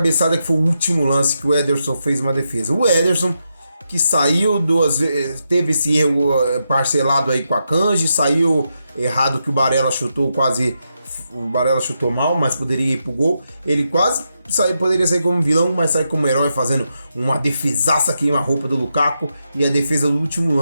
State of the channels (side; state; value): both; inverted; correlation -0.85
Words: que foi o último lance que o Ederson fez uma defesa. O Ederson, que saiu duas vezes, teve esse erro parcelado aí com a Akanji, saiu errado que o Barella chutou mal, mas poderia ir pro gol. Ele quase poderia sair como vilão, mas sai como herói, fazendo uma defesaça queima-roupa do Lukaku, e a defesa do último